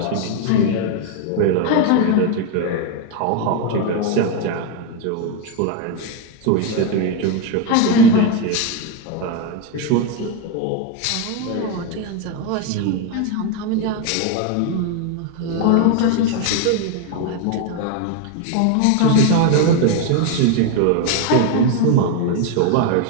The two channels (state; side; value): different; both; correlation 0.02